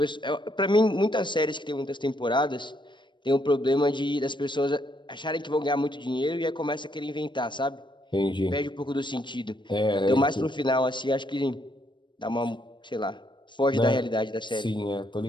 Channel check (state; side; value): late; right; 0.23 ms